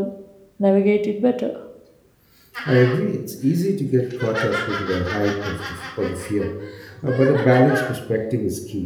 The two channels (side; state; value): both; identical; correlation 1.00